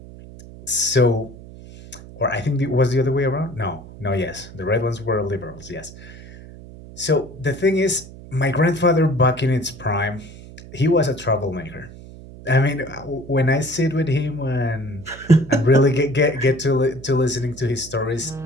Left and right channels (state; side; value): noise; right; hum, 17 dB below the sound